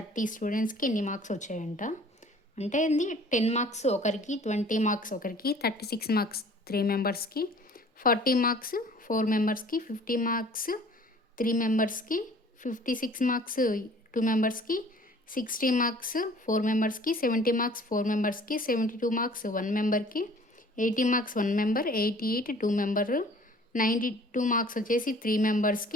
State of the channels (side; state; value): both; normal; correlation 0.51